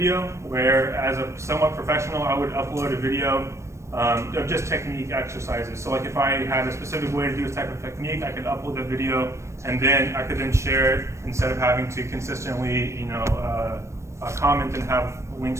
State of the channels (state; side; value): late; left; 0.14 ms